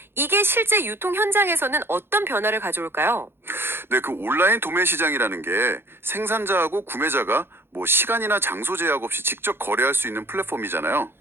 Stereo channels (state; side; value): late; left; 0.11 ms